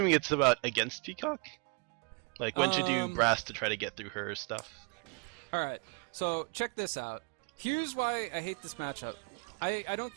it's about against Peacock? Like, when should you brass to try to get through her stuff? Alright, so check this out. Here's why I hate this matchup. I don't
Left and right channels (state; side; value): quieter; left; 33.8 dB